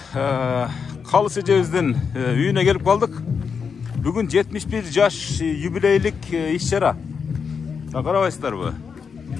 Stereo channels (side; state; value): right; quieter; 6.0 dB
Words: Калыс эжебиздин үйүнө келип калдык. Бүгүн 71 жаш юбилейлик иш-чара. Карабайсыздарбы?